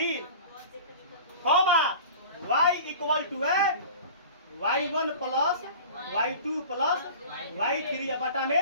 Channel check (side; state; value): both; inverted; correlation -0.39